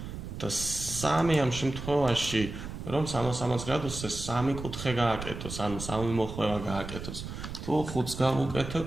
და 3 ამ შემთხვევაში, რომ 360 გრადუსზე 3 კუთხე გააკეთოს, ანუ 3 მოხვევა გააკეთოს. თუ 5-ს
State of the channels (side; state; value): right; noise; rumble, 9 dB below the sound